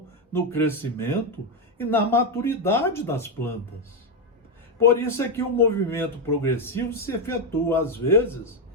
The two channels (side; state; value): both; normal; correlation 0.06